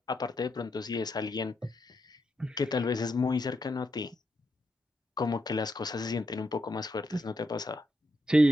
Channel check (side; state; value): both; normal; correlation 0.82